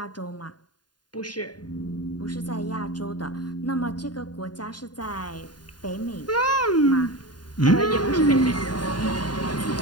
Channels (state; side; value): late; right; 0.70 ms